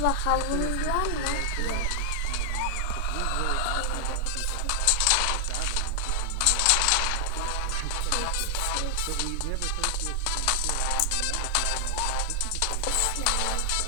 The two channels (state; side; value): different; both; correlation 0.00